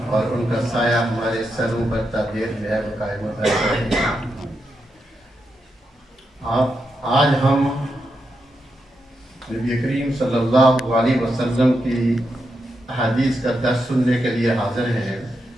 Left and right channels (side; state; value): both; normal; correlation 0.85